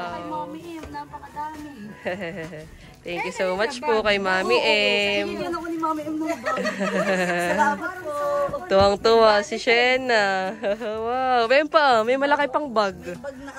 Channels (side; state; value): both; identical; correlation 1.00